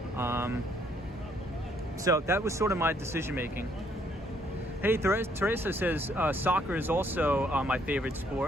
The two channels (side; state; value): both; normal; correlation 0.68